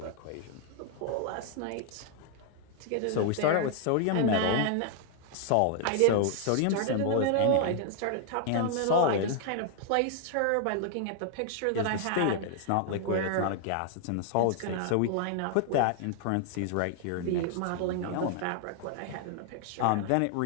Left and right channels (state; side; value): different; both; correlation 0.00